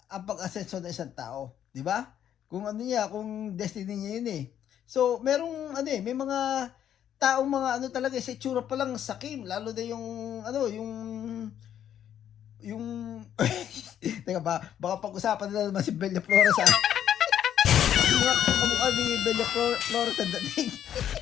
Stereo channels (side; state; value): right; quieter; 10.1 dB